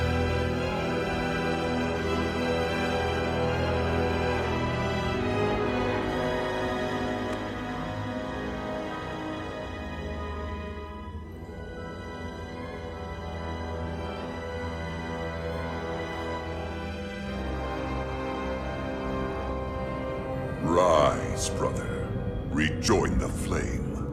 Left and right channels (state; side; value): identical; both; correlation 1.00